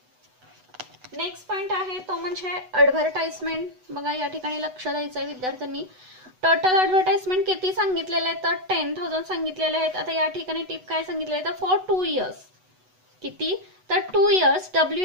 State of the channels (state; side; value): late; left; 8.0 ms